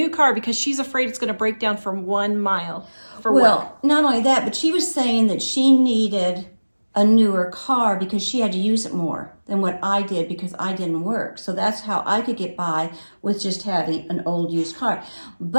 car because she's afraid it's going to break down from 1 mile for work. Well, not only that, but she was saying that she needed a newer car because she had to use it more than what I did because I didn't work. So that's how I could get by with just having an old used car.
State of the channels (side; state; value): both; inverted; correlation -1.00